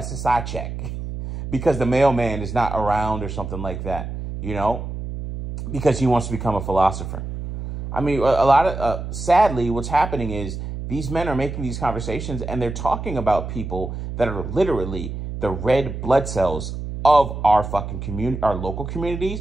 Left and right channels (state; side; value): noise; right; hum, 7 dB below the sound